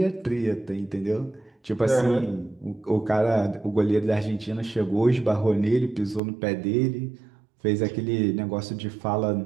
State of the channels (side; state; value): left; drops out; at 6.2 s